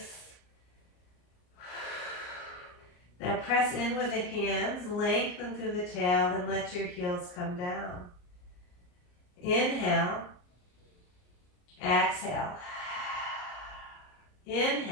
Now press in with the hands, lengthen through the tail, and let your heels come down. Inhale. Exhale.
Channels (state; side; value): late; right; 34 ms